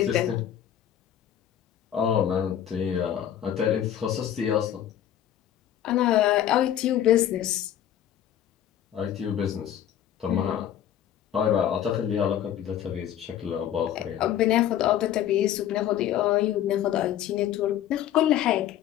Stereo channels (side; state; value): right; quieter; 10.8 dB